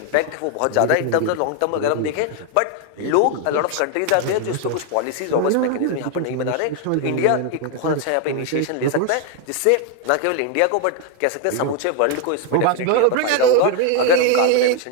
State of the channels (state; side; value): different; both; correlation 0.01